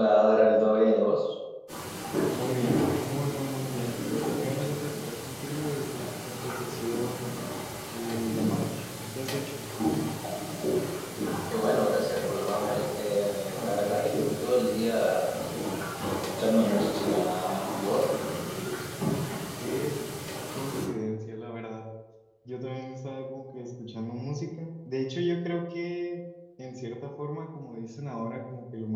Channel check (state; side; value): identical; both; correlation 1.00